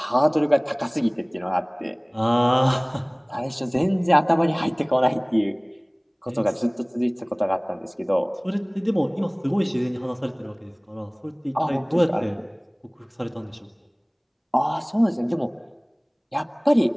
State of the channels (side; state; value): both; identical; correlation 1.00